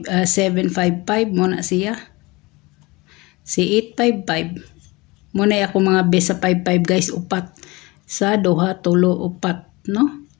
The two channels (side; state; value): right; quieter; 23.4 dB